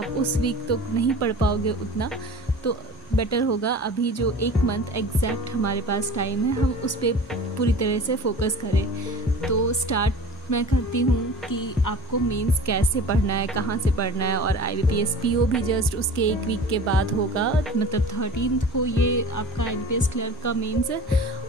उस वीक तो नहीं पढ़ पाओगे उतना। तो बेटर होगा अभी जो 1 मंथ एग्जैक्ट हमारे पास टाइम है हम उस पर पूरी तरह से फोकस करें। तो स्टार्ट मैं करती हूँ कि आपको मेंस कैसे पढ़ना है, कहाँ से पढ़ना है। और IBPS PO भी जस्ट उसके 1 वीक के बाद होगा, मतलब 13 को ये आपका IBPS क्लर्क का मेंस है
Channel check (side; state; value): both; normal; correlation 0.39